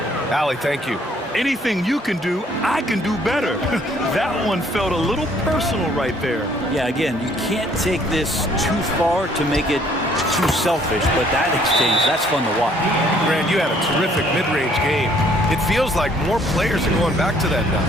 Allie, thank you. Anything you can do, I can do better. That one felt a little personal right there. Yeah, again, you can't take this too far to make it too selfish, but that exchange, that's fun to watch. Grant, you had a terrific mid-range game. It feels like more players are going back to that now.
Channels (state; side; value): normal; both; correlation 0.62